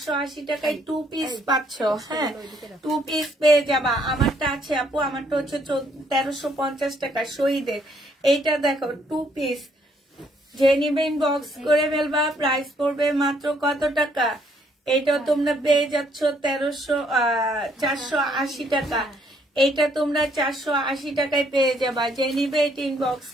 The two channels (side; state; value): both; normal; correlation 0.68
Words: টাকায় 2 পিস পাচ্ছ। হ্যাঁ 2 পিস পেয়ে যাবা। আমারটা আছে আপু, আমারটা হচ্ছে 1350 টাকা শহীদের। এইটা দেখো 2 পিস। যে নিবে ইনবক্স করে ফেলবা। প্রাইস পড়বে মাত্র কত টাকা? এটা তোমরা পেয়ে যাচ্ছ 480 টাকা। এইটা তোমরা 480 টাকায় পেয়ে যাবা। যে নিবে এটা ইনবক্স